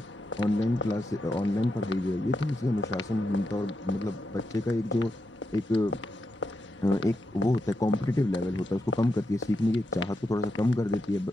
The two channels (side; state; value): both; normal; correlation 0.85